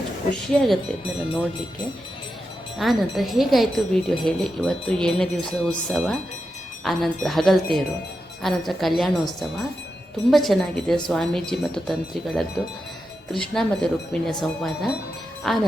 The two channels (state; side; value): normal; both; correlation 0.88